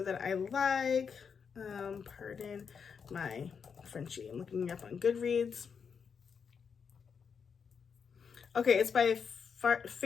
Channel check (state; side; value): quieter; right; 6.4 dB